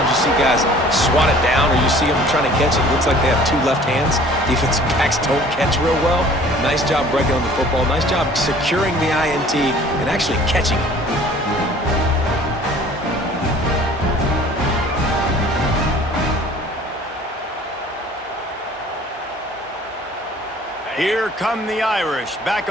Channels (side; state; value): both; normal; correlation 0.50